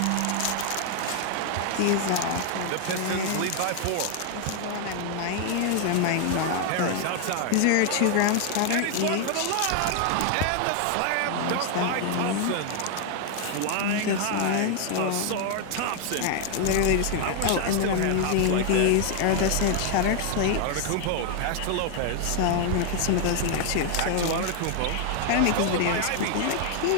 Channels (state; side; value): different; both; correlation 0.00